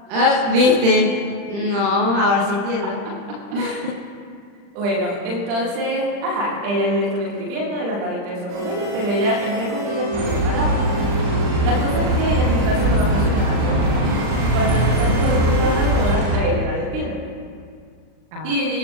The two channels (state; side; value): late; left; 40 ms